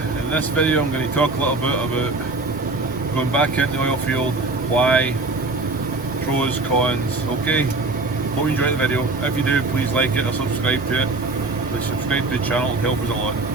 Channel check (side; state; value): left; quieter; 3.2 dB